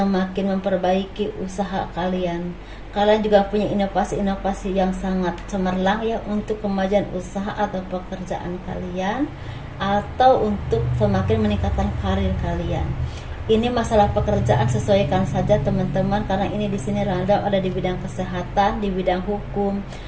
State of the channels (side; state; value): both; identical; correlation 1.00